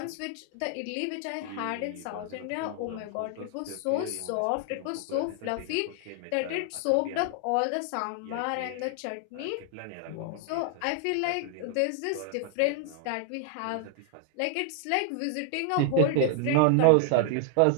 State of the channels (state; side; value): different; both; correlation 0.00